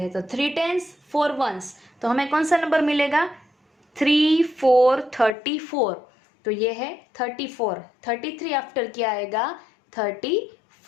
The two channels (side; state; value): right; drops out; at 5.4 s